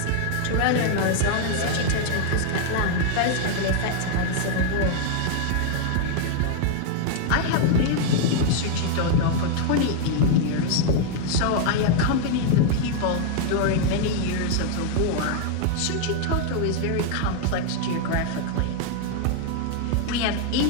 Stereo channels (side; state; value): both; different; correlation 0.00